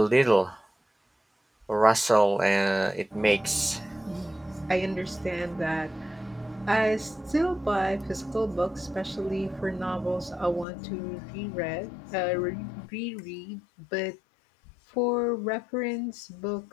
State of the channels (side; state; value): right; drops out; at 10.7 s